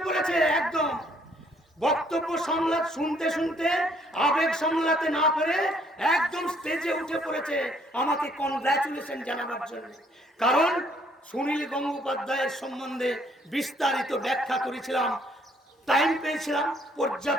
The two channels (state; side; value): normal; both; correlation 0.65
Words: পড়েছে। একদম বক্তব্য শুনতে শুনতে আবেগ সামলাতে না পেরে একদম স্টেজে উঠে পড়েছে আমাকে কনগ্রাচুলেশন জানাবার জন্য। কারণ সুনীল গঙ্গোপাধ্যায়ের সম্বন্ধে বিস্তারিত ব্যাখ্যা করেছিলাম, টাইম পেয়েছিলাম